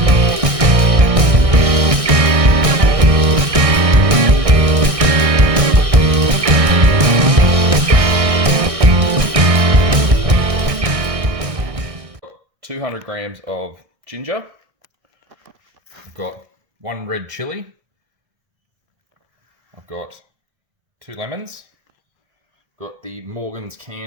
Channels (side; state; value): left; late; 1.6 ms